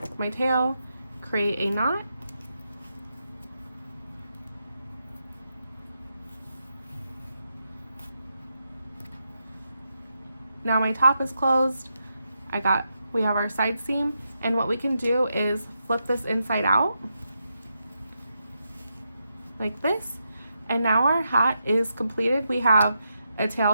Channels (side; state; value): both; inverted; correlation -0.84